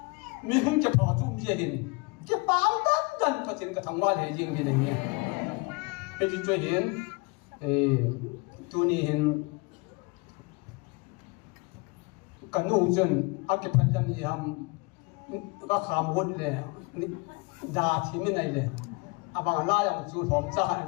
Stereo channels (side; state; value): right; quieter; 27.7 dB